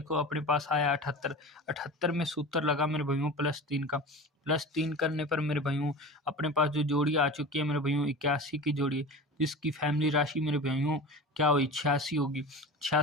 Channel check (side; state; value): both; normal; correlation 0.33